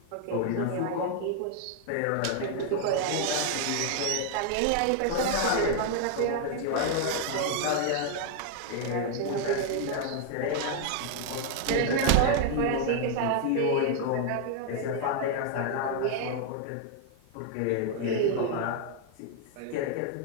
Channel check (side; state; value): both; different; correlation 0.00